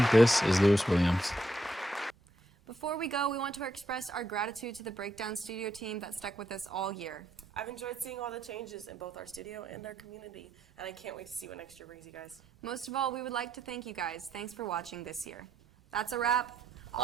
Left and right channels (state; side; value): normal; both; correlation 0.77